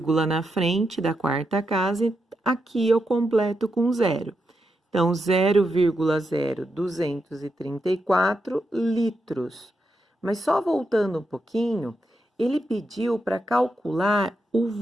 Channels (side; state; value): both; normal; correlation 0.85